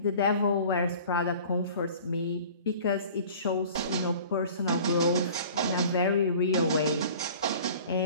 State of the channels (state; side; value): inverted; both; correlation -0.45